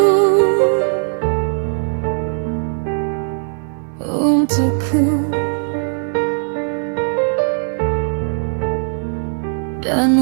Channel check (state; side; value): silent; left; 58 dB below the other